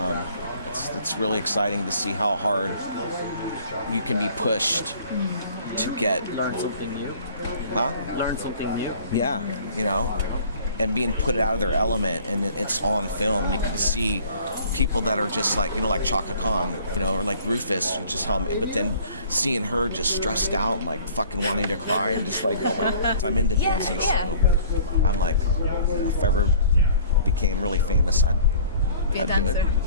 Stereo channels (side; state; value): both; inverted; correlation -0.51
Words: It's really exciting to see how hard you can be pushed to learn something new. Learn something new. Yeah, you know, and being put out of their element, and it's on film. You can see people that are just like, you know, like Chaka Khan, you know, or like Rufus, just how, but then seeing her just stressed out and like fucking wanting to cry and just like, oh my God. I'm into dancing, so I'm like, you know, if I ever became really famous, I'd dancer. do it.